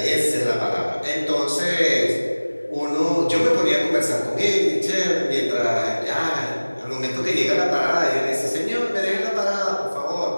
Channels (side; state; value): both; inverted; correlation -1.00